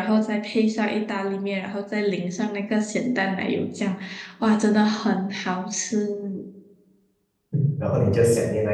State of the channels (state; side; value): identical; both; correlation 1.00